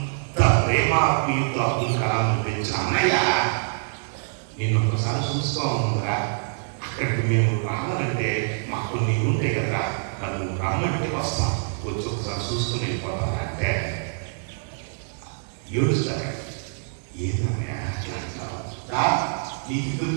ప్రేమ ఆత్మీయతో అబ్దుల్ కలాం పెంచిన అన్నయ్య నేను ఒకసారి చూసుకోరా, అక్కడికి మేము రావాలంటే మాకు కొన్ని ఉంటాయి కదా, నన్ను రమ్మంటే వస్తాం, వచ్చి ఒకసారి చూసుకుని వెళ్ళిపోతాం అంటే ఏడుస్తాడు. ఏదన్నా అట్లా అంటావు, నీకు ఇద్దరు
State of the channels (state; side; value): silent; left; digital silence